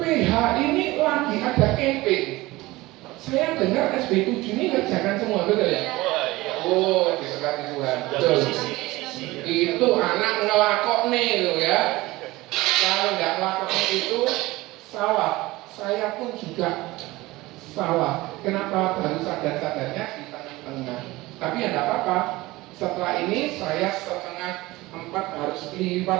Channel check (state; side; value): quieter; left; 19.8 dB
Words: ini lagi ada campaign. Saya dengar SB7 ini ngerjakan semua, betul ya? Oh, diberkati Tuhan. Betul. Itu anak ngelakok nih loh ya. Kalau nggak ngelakok itu salah. Saya pun juga salah. Kenapa baru sadar-sadarnya di tengah-tengah? Tapi ya nggak apa-apa. Setelah ini saya 3:30 harus